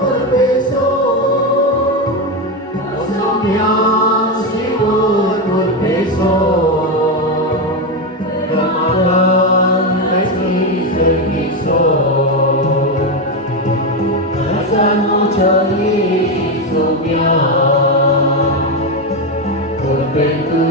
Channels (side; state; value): both; normal; correlation 0.11